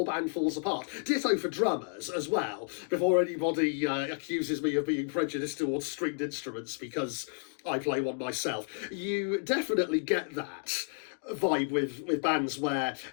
band falls apart. Ditto for drummers as well, before anybody accuses me of being prejudiced towards stringed instruments because I play one myself. You definitely get that vibe with bands where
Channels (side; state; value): right; silent; digital silence